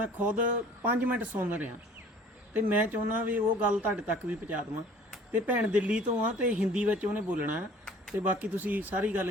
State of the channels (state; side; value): normal; both; correlation 0.50